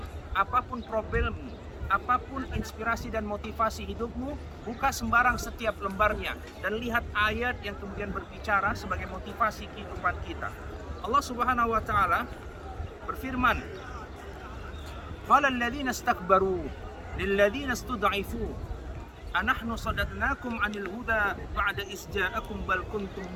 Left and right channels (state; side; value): identical; both; correlation 1.00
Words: apapun problemmu, apapun inspirasi dan motivasi hidupmu, buka sembarang setiap lembarnya dan lihat ayat yang kemudian berbicara sebagai motivasi kehidupan kita. Allah Subhanahu wa ta'ala berfirman, qala alladziina istakbaru lilladziina istud'ifu anahnu sadadnakum 'anil huda ba'da iz ja'akum bal kuntum